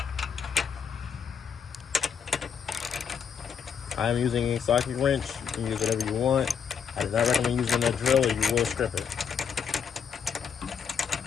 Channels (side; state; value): right; quieter; 7.0 dB